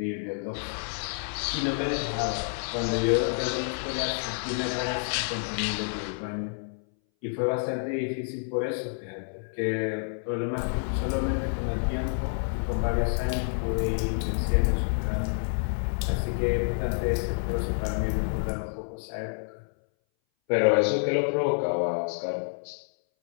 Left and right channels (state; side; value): silent; right; 59 dB below the other